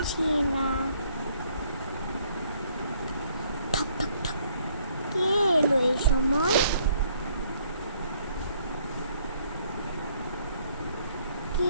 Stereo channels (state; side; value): inverted; both; correlation -0.66